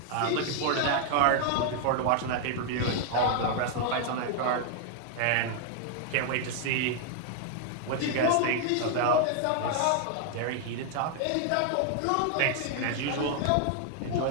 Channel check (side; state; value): both; different; correlation 0.00